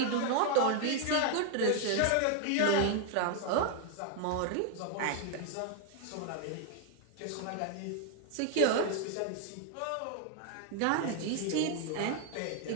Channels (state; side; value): different; both; correlation 0.00